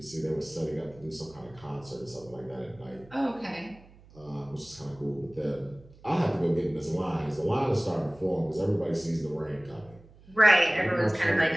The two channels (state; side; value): noise; right; hum, 24 dB below the sound